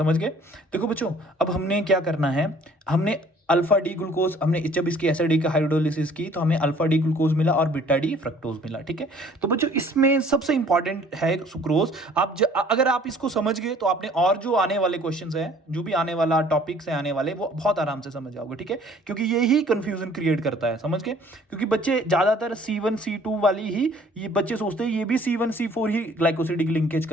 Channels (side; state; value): both; normal; correlation 0.55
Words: गए। देखो बच्चों, अब हमने क्या करना है, हमने अल्फा डी ग्लूकोज, हमने जब इसकी एसिडिक हाइड्रोलिसिस की तो हमें अल्फा डी ग्लूकोज मिला और बीटा डी फ्रक्टोज मिला। ठीक है, तो बच्चों इसमें सबसे इंपॉर्टेंट है सुक्रोज। अगर आप इसको समझ गए तो आपने और जो आने वाले क्वेश्चंस हैं, जो भी आने वाला टॉपिक्स है आने वाले, वो बहुत आराम से समझ जाओगे। ठीक है, क्योंकि ये ही कंफ्यूजन क्रिएट करता है। समझ गए, क्योंकि बच्चे ज्यादातर C1 C2 वाली ही ये बच्चे सोचते हैं ये भी C1 C4 ही ग्लाइकोसिडिक लिंकेज